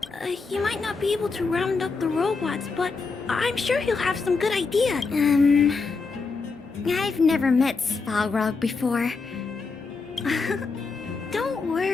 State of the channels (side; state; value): right; quieter; 4.4 dB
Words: He might not be able to round up the robots, but I'm sure he'll have some good ideas. I've never met Svarog before. Don't